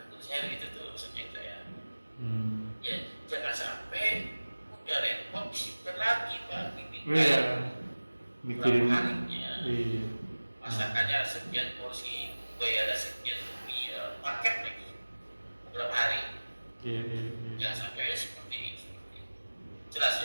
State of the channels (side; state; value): both; inverted; correlation -1.00